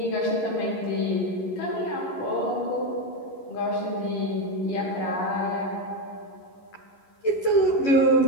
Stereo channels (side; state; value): right; late; 11 ms